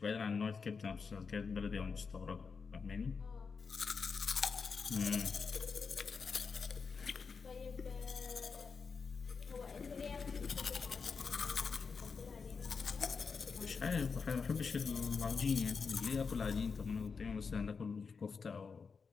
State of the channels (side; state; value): right; quieter; 5.3 dB